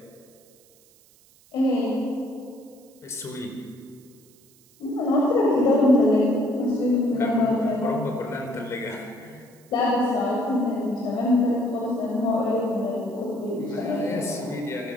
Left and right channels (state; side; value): noise; right; hiss, 29 dB below the sound